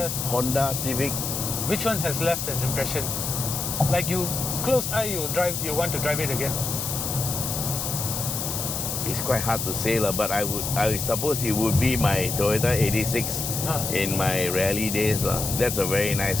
Toyotas. Honda, Civic. Which one has left an impression? Like you close eye, you want to drive it again. It's quite hard to say, but I suppose it would be my Toyota 86 in my rally days. That's a very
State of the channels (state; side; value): noise; left; hiss, 3 dB below the sound